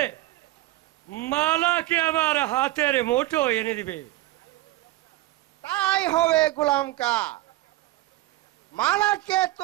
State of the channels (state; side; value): quieter; left; 17.4 dB